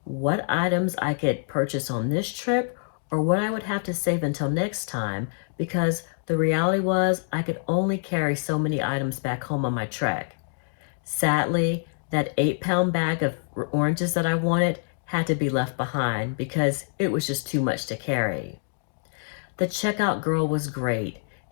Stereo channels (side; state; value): right; silent; digital silence